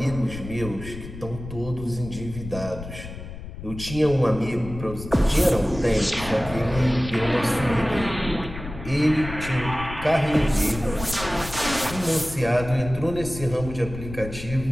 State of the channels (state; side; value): noise; left; rumble, 11 dB below the sound